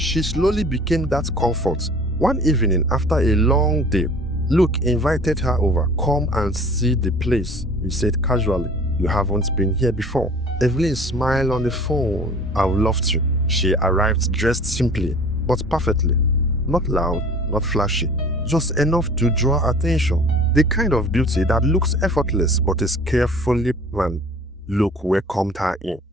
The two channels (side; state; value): both; normal; correlation 0.46